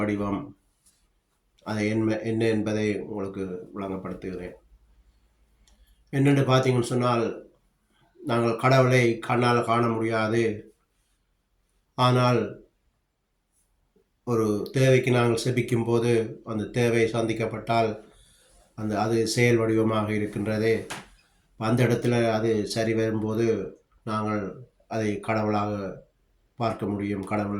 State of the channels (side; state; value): both; identical; correlation 1.00